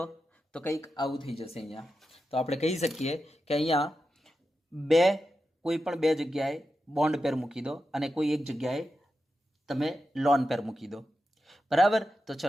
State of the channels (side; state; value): both; normal; correlation 0.89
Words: તો કંઈક આવું થઈ જશે અહીંયા. તો આપણે કહી શકીએ કે અહીંયા કોઈ પણ 2 જગ્યાએ બોન્ડ પેર મૂકી દો અને કોઈ એક જગ્યાએ તમે લોન પેર મૂકી દો. બરાબર? તો